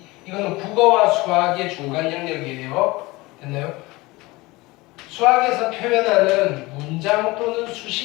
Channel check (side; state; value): right; quieter; 21.7 dB